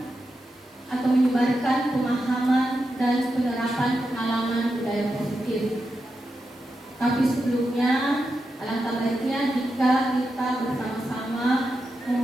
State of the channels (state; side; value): normal; both; correlation 0.88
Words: atau menyebarkan pemahaman dan penerapan pengalaman budaya positif. Tapi sebelumnya, alangkah baiknya jika kita bersama-sama